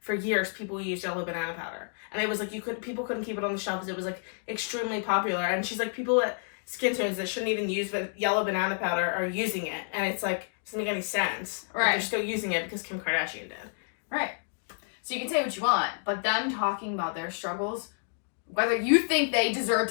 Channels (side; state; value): right; silent; 58 dB below the other